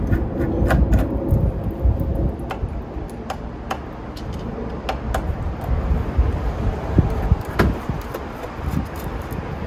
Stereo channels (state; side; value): identical; both; correlation 1.00